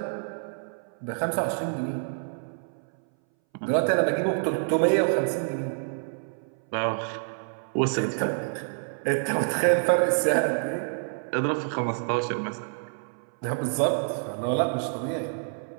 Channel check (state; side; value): silent; left; 60 dB below the other